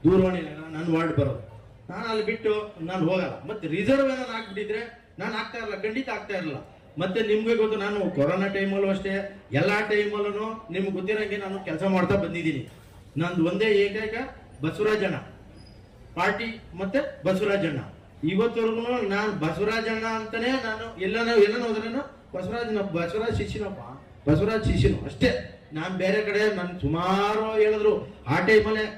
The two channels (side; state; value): both; identical; correlation 1.00